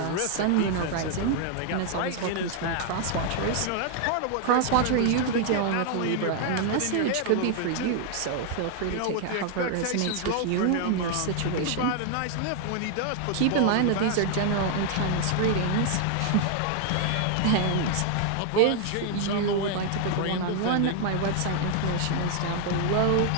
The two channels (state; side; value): different; both; correlation 0.00